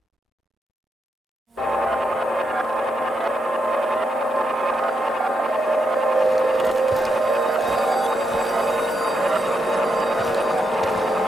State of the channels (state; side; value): normal; both; correlation 0.82